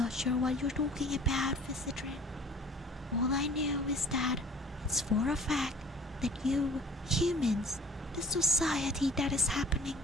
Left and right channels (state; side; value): normal; both; correlation 0.48